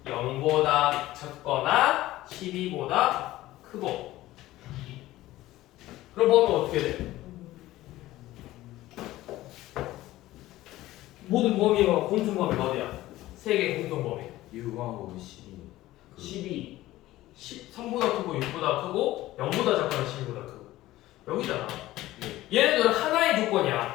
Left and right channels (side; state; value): right; quieter; 16.3 dB